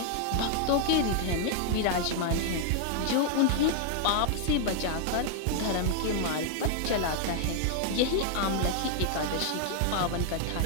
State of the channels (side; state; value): both; different; correlation 0.00